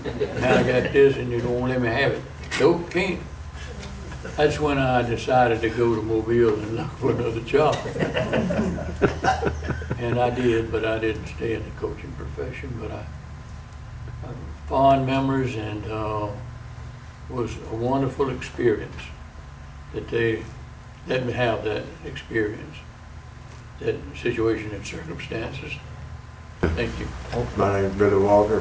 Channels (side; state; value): both; identical; correlation 1.00